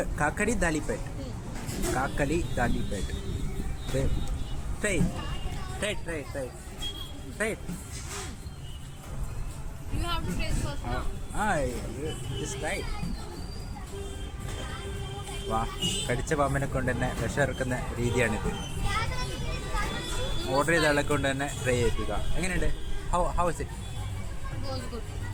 ദാലിപ്പേട്ട്. കാക്കലി ദാലിപ്പേട്ട്. Try. You have to taste first now. Just right. വാ, കടിച്ച പാമ്പിനെ കൊണ്ട് തന്നെ വിഷമിറക്കുന്ന രീതിയാണിത്. ഓർഡർ ചെയ്ത ആളെ കൊണ്ട് തന്നെ ട്രൈ ചെയ്യിപ്പിക്കുക. എങ്ങനെയുണ്ട്? How is it? It was good.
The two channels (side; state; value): both; identical; correlation 1.00